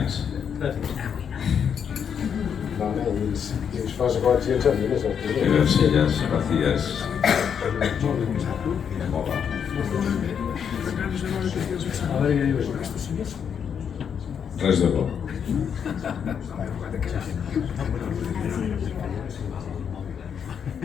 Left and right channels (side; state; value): right; quieter; 7.6 dB